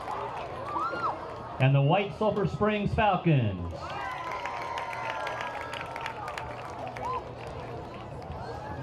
and the White Sulphur Springs Falcons.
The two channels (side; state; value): both; identical; correlation 1.00